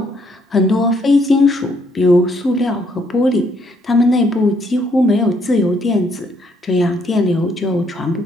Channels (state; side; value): normal; both; correlation 0.70